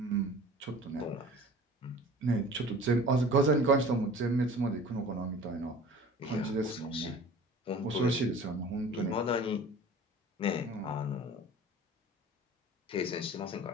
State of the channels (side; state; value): both; normal; correlation 0.43